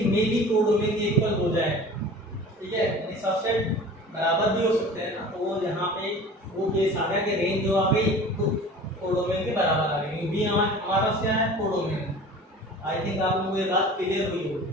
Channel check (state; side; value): normal; both; correlation 0.41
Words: में भी कोडोमेन के इक्वल हो जाए, ठीक है। यानी सबसेट बराबर भी हो सकते हैं ना, तो वो यहाँ पे वो केस आ गया कि रेंज जो आ गई तो कोडोमेन के बराबर आ गई। बी हमारा पास क्या है, कोडोमेन। आई थिंक आप लोगों को ये बात क्लियर हुई होगी।